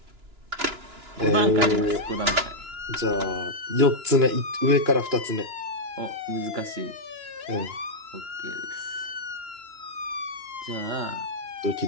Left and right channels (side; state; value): left; late; 2.9 ms